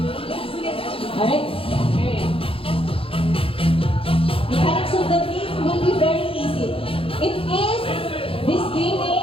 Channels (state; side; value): late; right; 0.27 ms